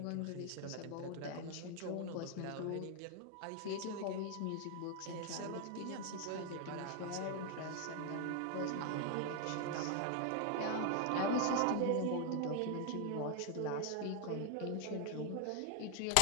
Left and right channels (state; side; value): different; both; correlation 0.00